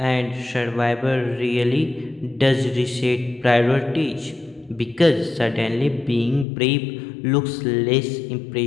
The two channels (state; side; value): drops out; right; at 6.5 s